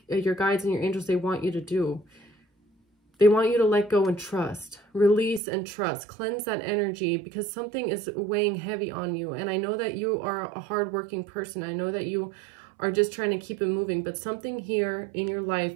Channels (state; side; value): drops out; left; at 5.4 s